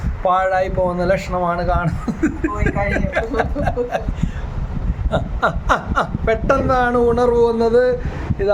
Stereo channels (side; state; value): both; identical; correlation 1.00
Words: പാഴായി പോകുന്ന ലക്ഷണമാണ് കാണുന്നത്. പെട്ടെന്നാണ് ഉണർവ് വന്നത്.